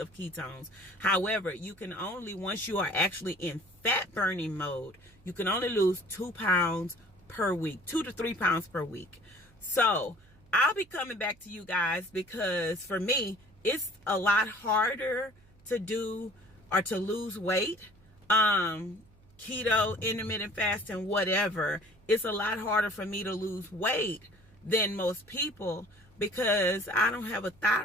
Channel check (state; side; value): noise; right; hum, 28 dB below the sound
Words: ketones. However, you can only, once you are actually in fat burning mode, you can only lose 2 pounds per week, 2 to 3 pounds per week. So I'll be coming back to you guys, because for me, it's a lot harder to do or to lose weight. Keto, intermittent fasting, whatever, it's a lot harder for me to lose weight than most people, because I don't have a